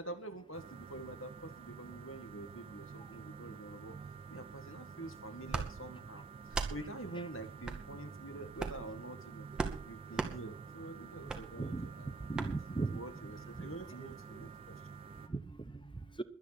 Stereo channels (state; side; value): quieter; left; 3.4 dB